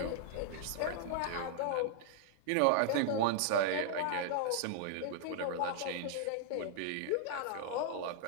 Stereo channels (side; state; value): both; different; correlation -0.01